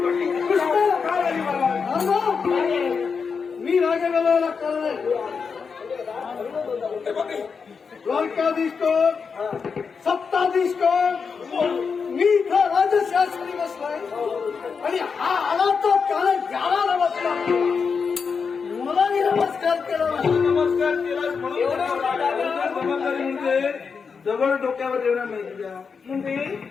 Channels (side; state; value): right; quieter; 5.6 dB